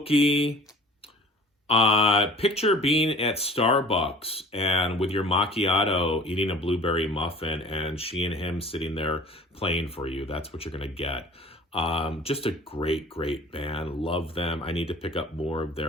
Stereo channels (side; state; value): both; normal; correlation 0.45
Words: Picture being at Starbucks and with your macchiato eating a blueberry muffin and She and Him sitting there playing for you. That's what you're going to get. Just a great, great band. Love them. I need to pick up more of